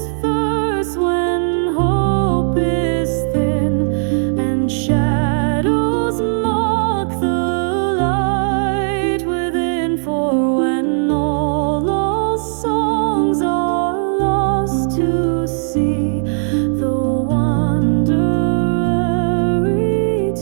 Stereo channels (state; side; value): silent; left; digital silence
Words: verse when hope is thin and shadows mock the light within. For when all songs are lost to sea, the wanderer